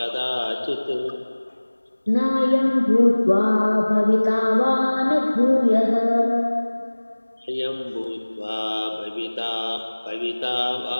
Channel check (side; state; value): both; inverted; correlation -1.00